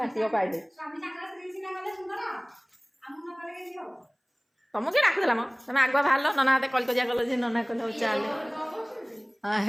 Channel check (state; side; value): identical; both; correlation 1.00